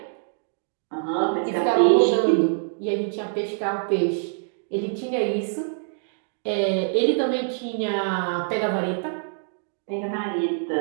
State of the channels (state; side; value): silent; left; digital silence